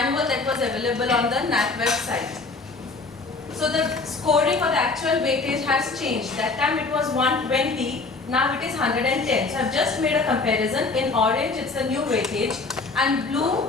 that was available on the NAAC website. So the scoring for the actual weightage has changed. That time it was 120. Now it is 110. So I've just made a comparison. In orange it's the new weightage and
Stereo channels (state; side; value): quieter; right; 3.8 dB